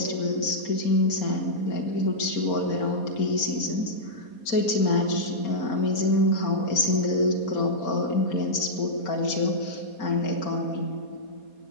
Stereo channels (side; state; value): right; late; 4.2 ms